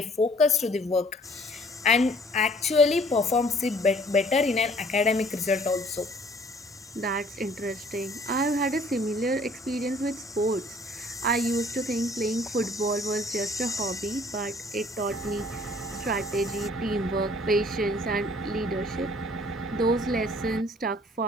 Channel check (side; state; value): both; normal; correlation 0.56